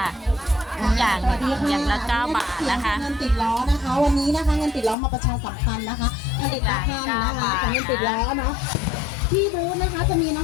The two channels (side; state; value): right; drops out; at 5.0 s